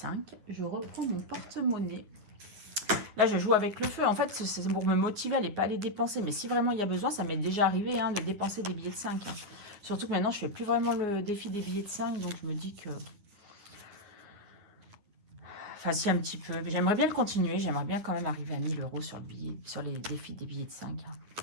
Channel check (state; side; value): late; left; 9.7 ms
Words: Je reprends mon porte-monnaie. Là, je joue avec le feu. En fait, c'est pour me motiver à ne pas les dépenser. Mais si vraiment il y a besoin, ça m'est déjà arrivé hein, de dépenser des billets de 5. Hein. Surtout que maintenant, je ne fais plus vraiment le défi des billets de 5. Donc, je me dis que... Enfin, si, un petit peu. J'aimerais bien le continuer. J'aimerais bien quand même arriver à 1000 euros sur, sur les défis des billets de 5. Hein.